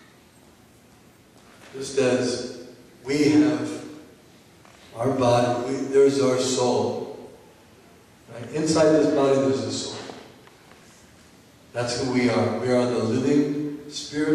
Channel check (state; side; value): identical; both; correlation 1.00